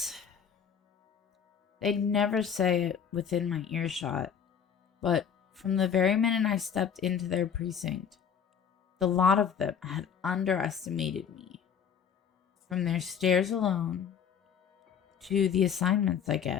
They'd never say it within my earshot, but from the very minute I stepped into their precinct, the lot of them had underestimated me. From their stares alone, to the assignments I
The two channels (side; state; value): right; quieter; 7.6 dB